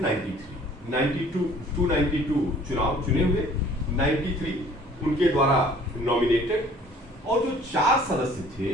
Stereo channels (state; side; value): normal; both; correlation 0.53